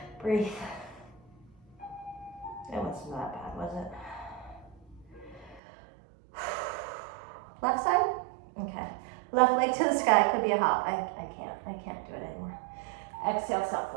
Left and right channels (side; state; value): left; drops out; at 5.6 s